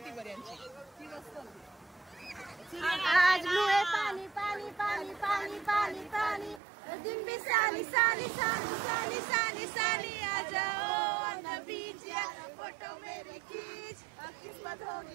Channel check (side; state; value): left; drops out; at 6.6 s